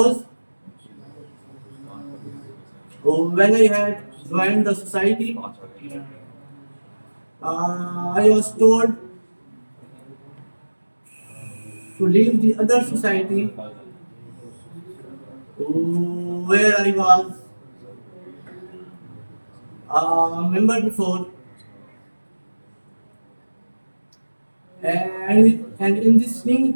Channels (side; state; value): both; inverted; correlation -1.00